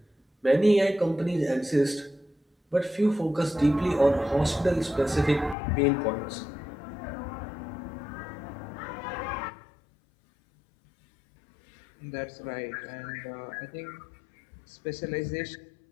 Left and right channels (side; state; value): right; drops out; at 5.6 s